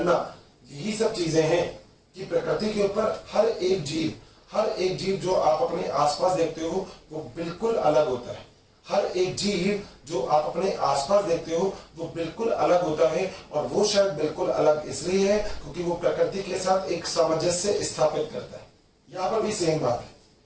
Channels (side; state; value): both; identical; correlation 1.00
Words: यही सब चीजें हैं कि प्रकृति के ऊपर हर एक जीव जो आप अपने आसपास देखते हो वो बिल्कुल अलग होता है। हर एक जीव जो आप अपने आसपास देखते हो वो बिल्कुल अलग होता है, और वो शायद बिल्कुल अलग इसलिए है क्योंकि वो प्रकृति के साथ एक सामंजस्य स्थापित करता है। यहाँ पर भी सेम बात है।